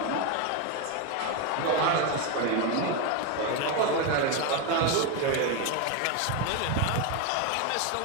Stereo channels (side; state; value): both; different; correlation 0.02